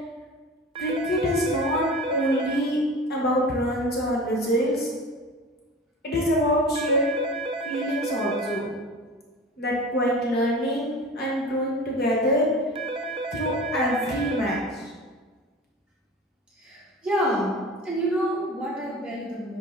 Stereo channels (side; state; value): both; normal; correlation 0.36